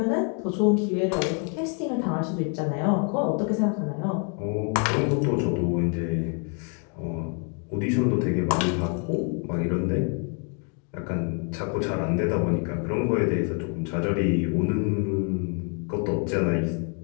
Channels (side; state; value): right; quieter; 39.0 dB